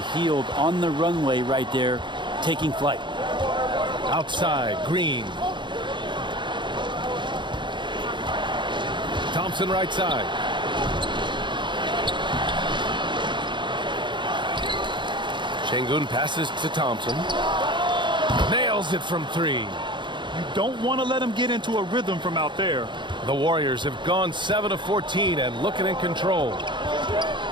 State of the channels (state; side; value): late; left; 0.23 ms